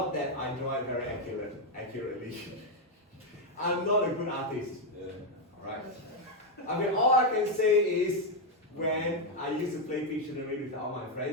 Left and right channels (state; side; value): normal; both; correlation 0.03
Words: that I draw it very accurately. I'm not a good artist. Alright. I mean, all I can say is when I used to play Pictionary with all my